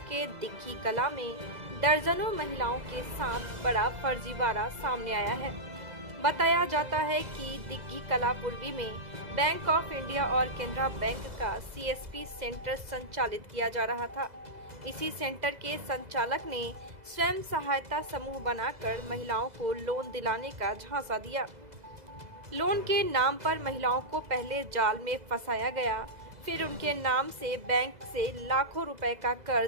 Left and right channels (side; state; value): left; late; 2.0 ms